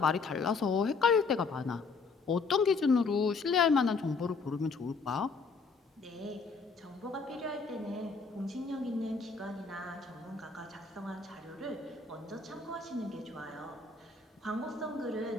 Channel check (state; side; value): quieter; right; 4.5 dB